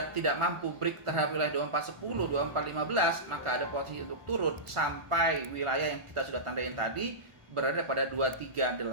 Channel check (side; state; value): left; late; 1.5 ms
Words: tidak mampu break terhadap wilayah 2410, 2415, maka ada potensi untuk turun sampai wilayah yang kita sudah tandain tadi berada pada